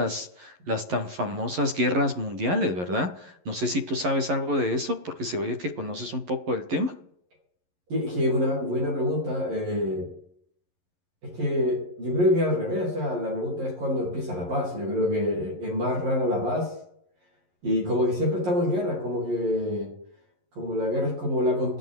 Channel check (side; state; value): left; late; 11 ms